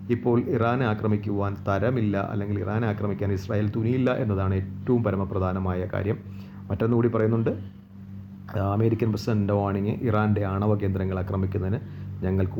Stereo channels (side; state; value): both; identical; correlation 1.00